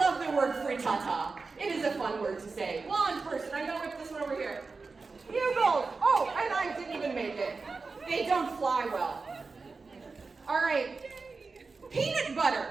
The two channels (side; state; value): left; quieter; 4.2 dB